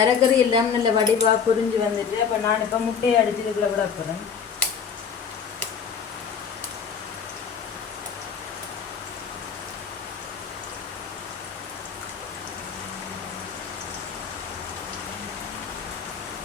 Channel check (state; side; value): quieter; right; 6.7 dB